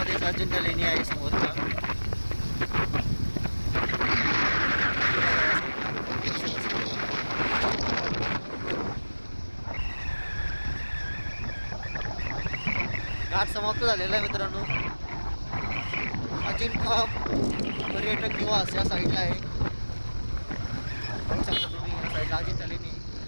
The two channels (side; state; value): both; inverted; correlation -1.00